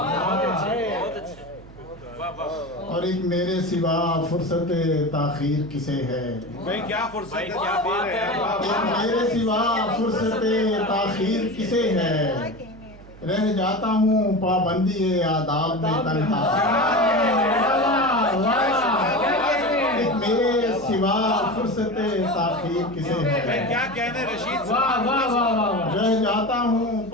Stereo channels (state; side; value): noise; right; hum, 20 dB below the sound